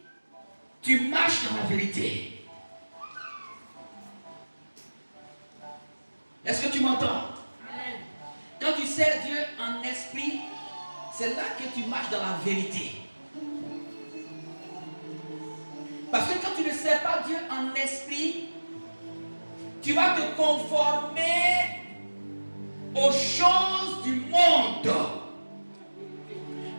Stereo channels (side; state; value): both; inverted; correlation -1.00